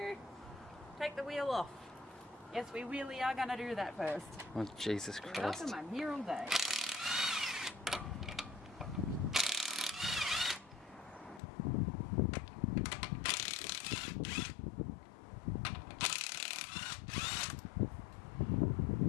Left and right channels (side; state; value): right; drops out; at 11.4 s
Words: take the wheel off. Yes, we really are going to do that first. Oh, Jesus Christ. Welcome, I'm here all day.